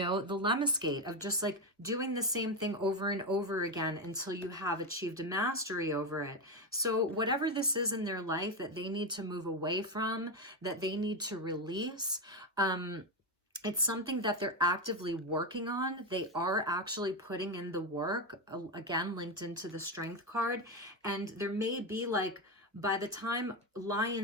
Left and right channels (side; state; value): both; normal; correlation 0.11